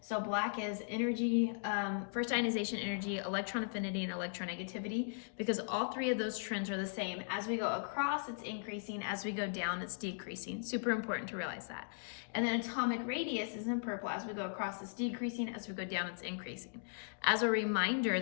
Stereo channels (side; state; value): right; silent; digital silence